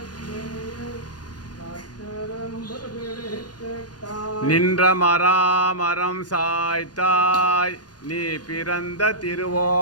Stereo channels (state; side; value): late; right; 0.69 ms